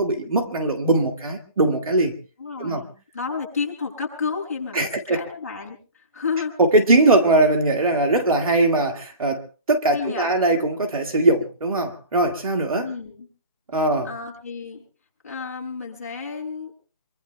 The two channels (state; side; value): inverted; both; correlation -0.38